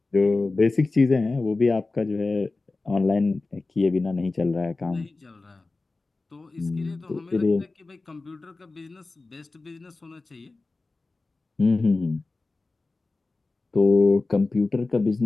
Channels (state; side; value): quieter; right; 3.5 dB